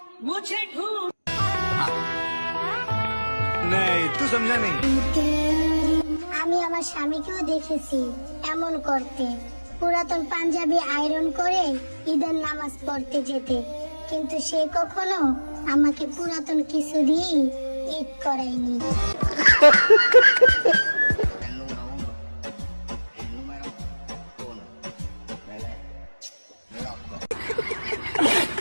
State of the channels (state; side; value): inverted; both; correlation -1.00